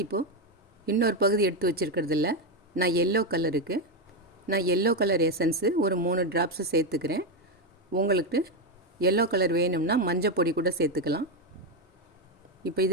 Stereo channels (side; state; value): both; normal; correlation 0.08